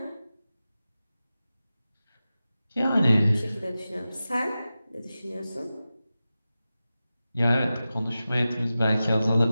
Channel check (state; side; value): inverted; both; correlation -0.94